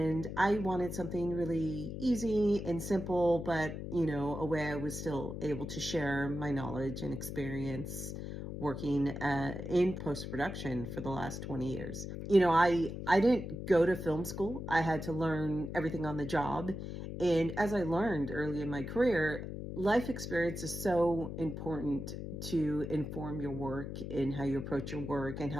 I wanted something really easy and simple, but a way I was still able to share my knowledge and experience working in post-production for the last 20 years. I didn't go to film school. I had to learn everything on the job. And as I learned early in my career, life experience is so important to inform your work and how you approach your work and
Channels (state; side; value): noise; left; hum, 7 dB below the sound